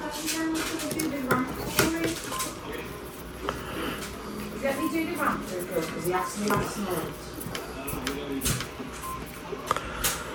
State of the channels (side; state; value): both; identical; correlation 1.00